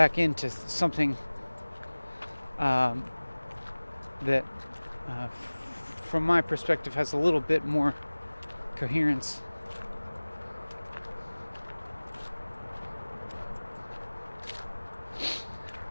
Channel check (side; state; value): both; inverted; correlation -1.00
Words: into something that from my perspective has a little bit more coherence.